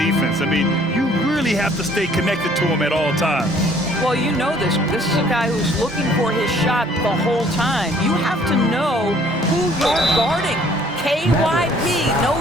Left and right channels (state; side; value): normal; both; correlation 0.59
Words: I mean, you really have to stay connected to him at all times. Well, you know this. This is a guy who's looking for his shot the whole time. You have to know who you're guarding. KYP,